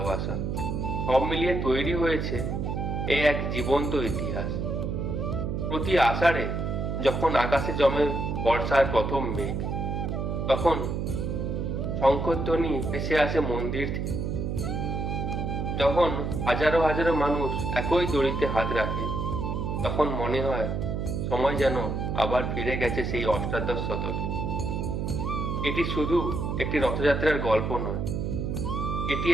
সব মিলিয়ে তৈরি হয়েছে এই এক জীবন্ত ইতিহাস। প্রতি আষাঢ়ে যখন আকাশে জমে বর্ষার প্রথম মেঘ, তখন শঙ্খধ্বনি ভেসে আসে মন্দির থেকে। যখন হাজারো হাজারো মানুষ একই দড়িতে হাত রাখে, তখন মনে হয় সময় যেন আবার ফিরে গেছে সেই অষ্টাদশ শতকে। এটি শুধু একটি রথযাত্রার গল্প নয়, এটি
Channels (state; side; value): noise; right; hum, 1 dB below the sound